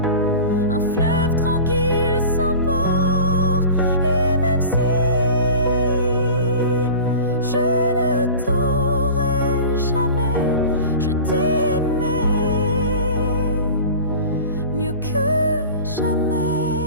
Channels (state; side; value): inverted; both; correlation -0.36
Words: Un fleuve tranquille sans port. Et même si je ne t'aurai jamais, je t'ai aimé mieux que jamais.